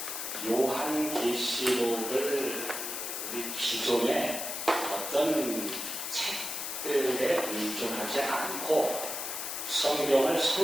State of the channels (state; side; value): noise; left; hiss, 4 dB below the sound